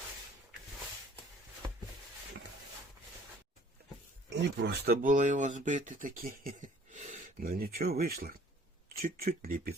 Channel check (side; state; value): both; normal; correlation 0.55